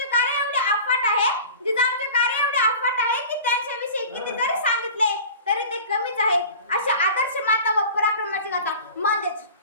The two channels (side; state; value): both; inverted; correlation -0.39